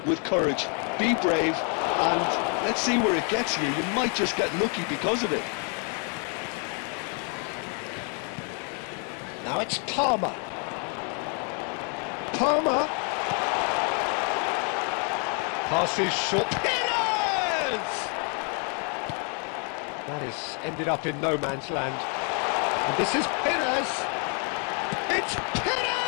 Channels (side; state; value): right; quieter; 39.4 dB